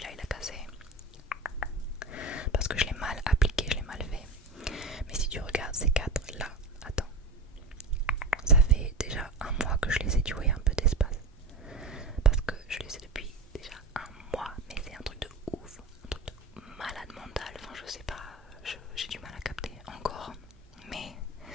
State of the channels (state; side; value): quieter; left; 3.2 dB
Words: il a cassé parce que je l'ai mal appliqué, je l'ai mal fait. Mais si tu regardes ces quatre là, attends, ça fait déjà un mois que je les ai, tu vois, il y a un peu d'espace. Parce que je les ai depuis déjà un mois, mais c'est un truc de ouf, un truc de malade mental, enfin je sais pas, j'ai du mal à capter encore. Mais